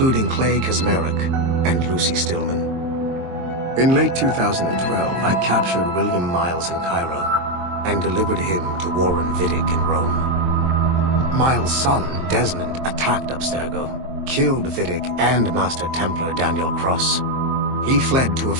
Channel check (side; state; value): left; late; 23 ms